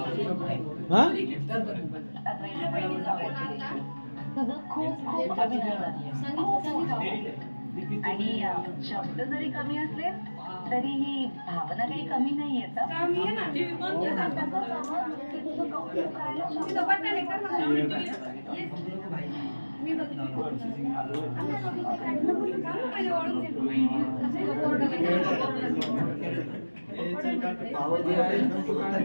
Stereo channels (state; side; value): inverted; both; correlation -1.00